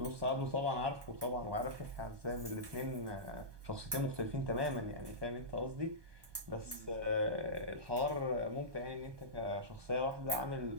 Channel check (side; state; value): left; late; 1.2 ms